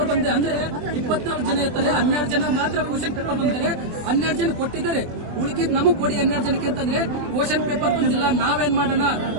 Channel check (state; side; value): late; left; 24 ms